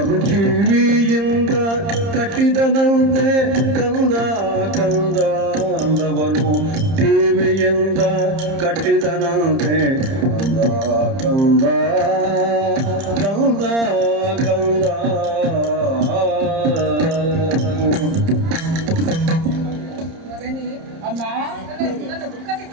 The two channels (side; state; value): left; late; 30 ms